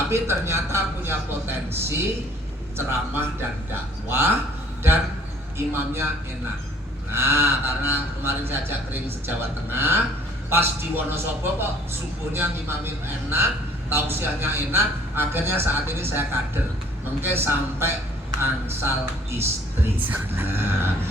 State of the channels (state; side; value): normal; both; correlation 0.57